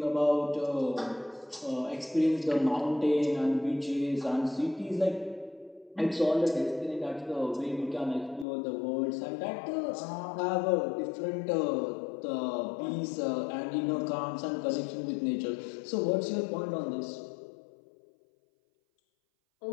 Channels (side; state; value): right; drops out; at 8.5 s